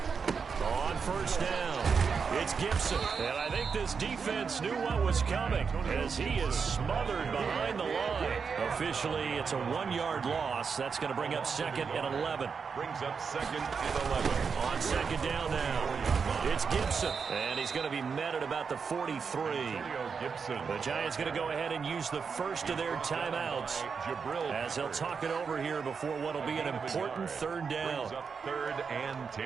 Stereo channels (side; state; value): left; quieter; 5.7 dB